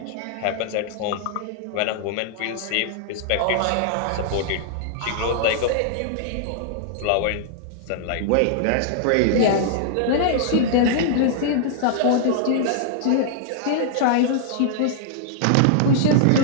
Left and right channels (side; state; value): both; different; correlation -0.01